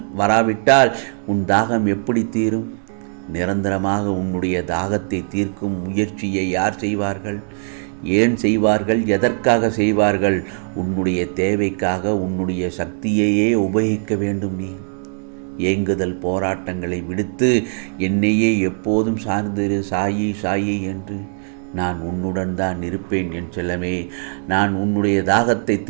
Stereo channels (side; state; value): left; silent; digital silence